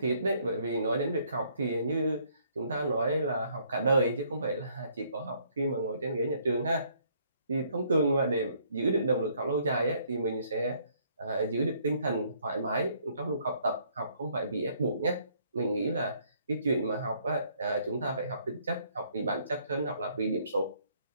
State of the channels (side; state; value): both; inverted; correlation -0.66